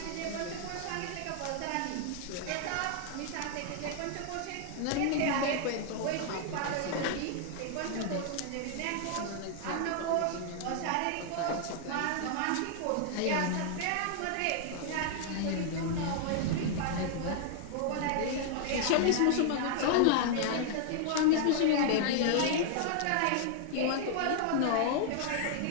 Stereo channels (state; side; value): different; both; correlation -0.01